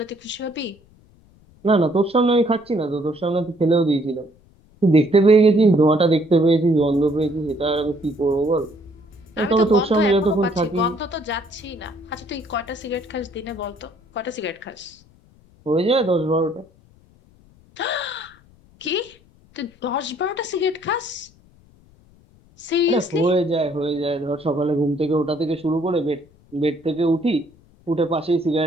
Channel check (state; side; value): noise; left; rumble, 29 dB below the sound